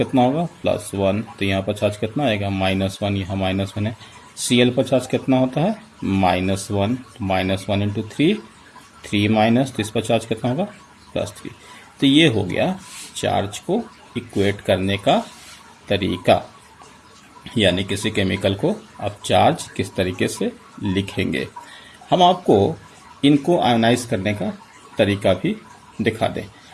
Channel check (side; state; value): both; identical; correlation 1.00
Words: होगा +1। तो यहाँ पर चार्ज कितना आएगा -1, यहाँ -1 है। Cl पर चार्ज कितना होता है -1, -1 इंटू 3 माइनस, तो इस पर चार्ज कितना होगा +3। तो ये हो गया चार्ज को इक्वेट करने का तरीका, यानी किसी केमिकल को आप चार्ज किस तरीके से लिखेंगे। हम आपको इनको आयोनाइज करने का तरीका भी दिखा दें,